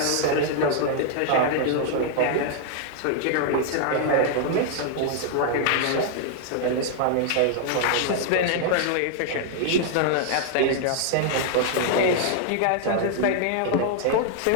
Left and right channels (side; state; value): both; different; correlation -0.01